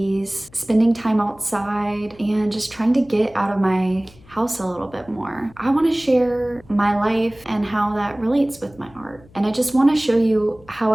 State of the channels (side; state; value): left; noise; hum, 25 dB below the sound